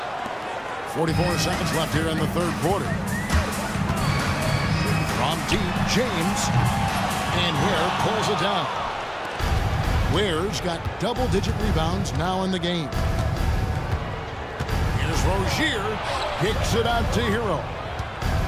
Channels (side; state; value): both; identical; correlation 1.00